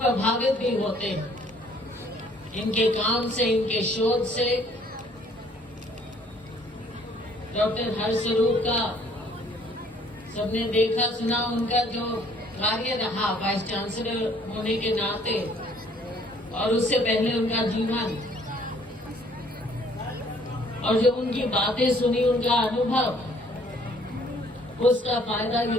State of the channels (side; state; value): both; normal; correlation 0.60